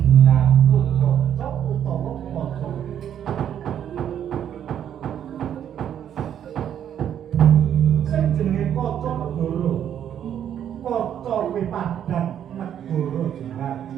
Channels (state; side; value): quieter; left; 9.7 dB